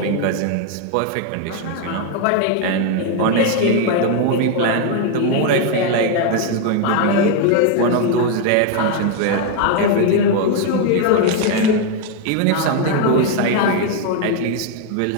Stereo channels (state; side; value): different; both; correlation 0.01